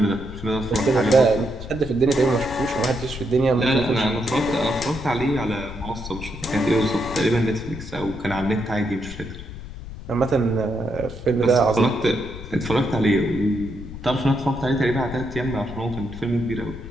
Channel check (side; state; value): left; noise; rumble, 12 dB below the sound